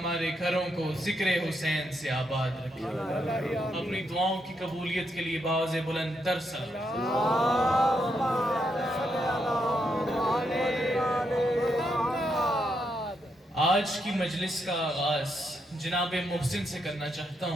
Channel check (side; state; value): both; normal; correlation 0.80